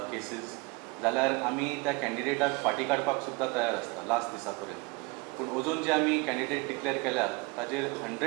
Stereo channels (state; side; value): quieter; left; 26.6 dB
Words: cases जाल्यार आमी त्या कॅन्डिडेटाक फाटी काडपाक सुद्दां तयार आसता लास्ट दिसा पर्यंत. पूण अजून जे आमी कॅन्डिडेट डिक्लेअर केल्या ताजेर